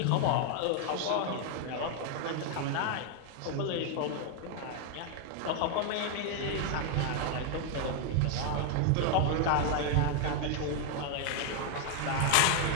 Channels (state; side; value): different; both; correlation 0.00